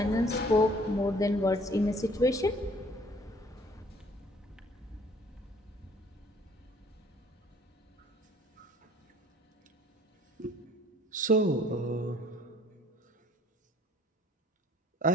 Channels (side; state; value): both; normal; correlation 0.57